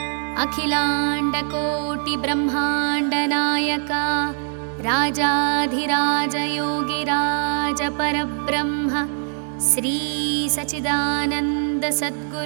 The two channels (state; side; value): silent; left; digital silence